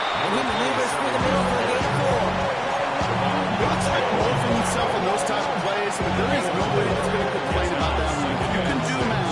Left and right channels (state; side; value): identical; both; correlation 1.00